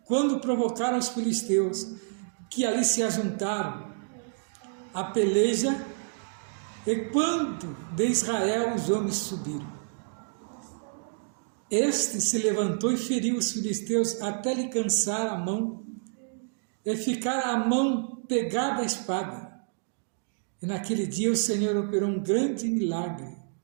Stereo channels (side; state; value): left; silent; digital silence